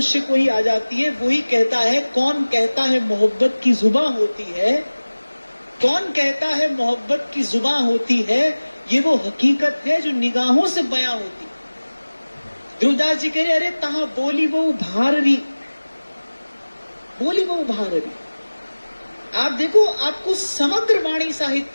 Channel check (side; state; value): both; inverted; correlation -1.00